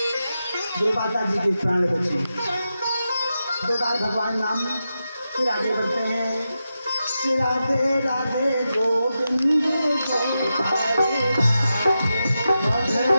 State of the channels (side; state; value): both; inverted; correlation -0.90